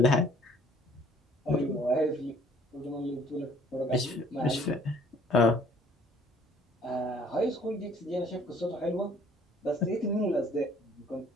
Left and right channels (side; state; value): both; normal; correlation 0.57